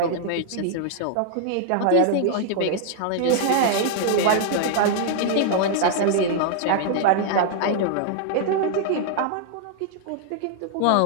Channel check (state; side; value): different; both; correlation -0.01